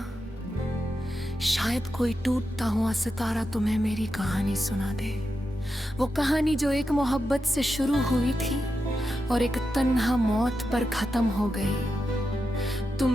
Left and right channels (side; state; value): both; normal; correlation 0.88